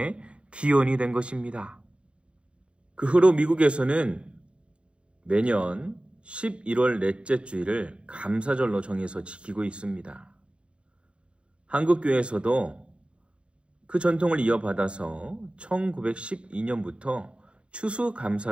기원이 된 것입니다. 그 후로 미국에서는 매년 11월 넷째 주일을 감사절로 정해서 지키고 있습니다. 한국교회에서도 그 전통을 이어받아서 1912년부터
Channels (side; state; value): left; late; 0.057 ms